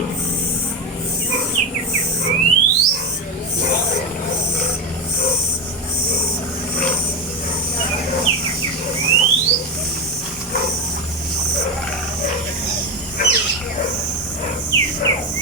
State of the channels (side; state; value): both; normal; correlation 0.15